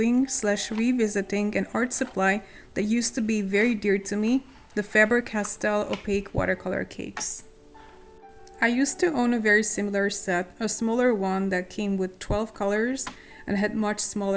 / revisiting an art supply that used to be very dear to me, the Faber Castell opaque watercolor cakes. I used to own a very similar set, a smaller one that came with 12 colors and had much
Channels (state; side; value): identical; both; correlation 1.00